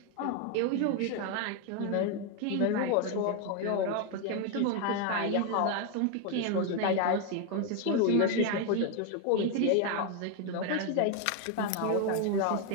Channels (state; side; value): different; both; correlation 0.01